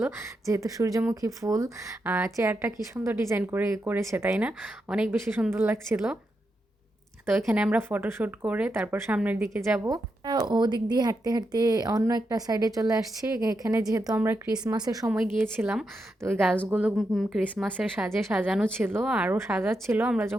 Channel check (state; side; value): normal; both; correlation 0.85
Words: যেহেতু সূর্যমুখী ফুল। চেয়ারটা কি সুন্দর ডিজাইন করেছে, তাই না? অনেক বেশি সুন্দর লাগছিল। তো এখানে আমরা ফটোশ্যুট করে তারপর সামনের দিকে যাব। ওদিক দিয়ে হাঁটতে হাঁটতে অন্য একটা সাইডে চলে আসছি। এখানে যেহেতু আমরা ক্রিসমাসের সময় গিয়েছিলাম, তো ওই গাছগুলো ক্রিসমাসের সাজে সাজানো ছিল, আরও সাজাচ্ছিল। আমরা